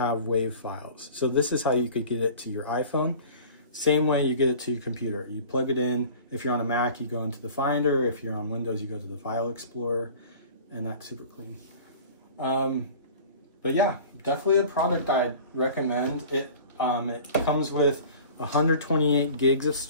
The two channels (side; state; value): both; inverted; correlation -0.43